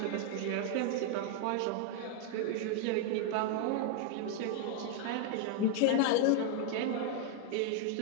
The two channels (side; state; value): both; different; correlation 0.00